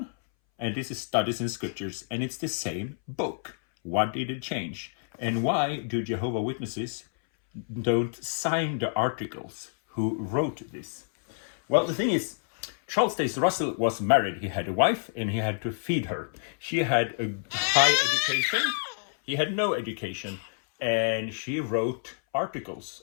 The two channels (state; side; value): silent; right; 59 dB below the other